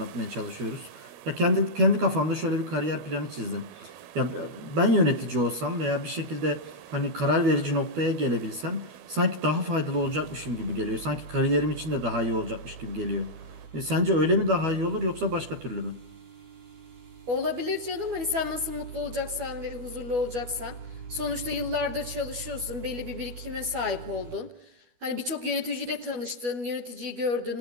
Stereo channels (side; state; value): left; late; 12 ms